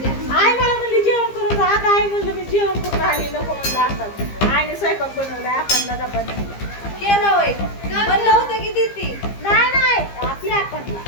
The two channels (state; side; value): late; right; 15 ms